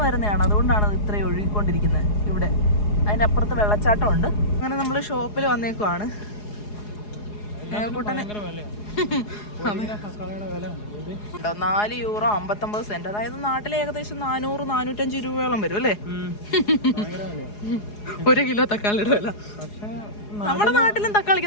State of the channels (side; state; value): right; late; 4.8 ms